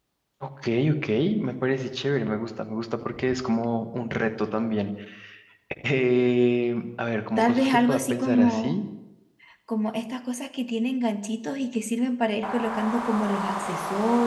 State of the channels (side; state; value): both; identical; correlation 1.00